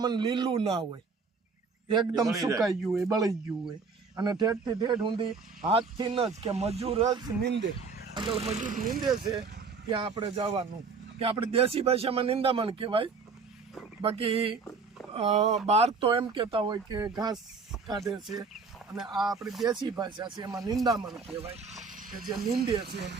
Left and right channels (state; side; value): quieter; left; 4.8 dB